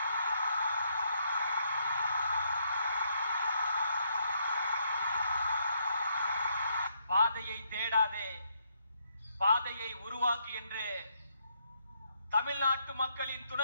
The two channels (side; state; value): both; inverted; correlation -0.74